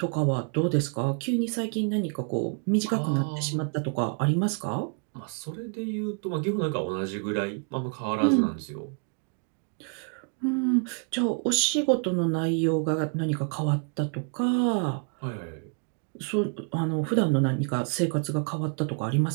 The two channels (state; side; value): quieter; left; 38.8 dB